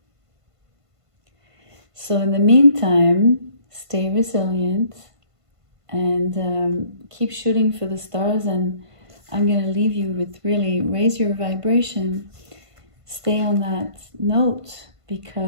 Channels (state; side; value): late; left; 1.5 ms